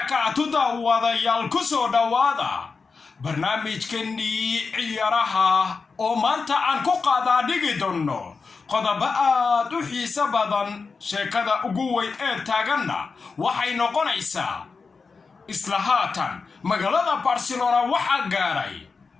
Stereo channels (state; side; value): quieter; right; 4.7 dB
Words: داواديال كسو داوادا برنامج كني عيارها oo maanta aan ku qaada dhigi doono qodobo aad u xiiso badan sheekada ugu weyn ee taaganna waxay noqonaysaa isla haatan magaalada Barcelona waxa gaaray